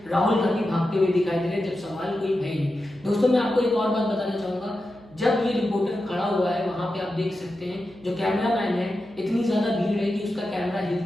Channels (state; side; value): noise; right; hum, 23 dB below the sound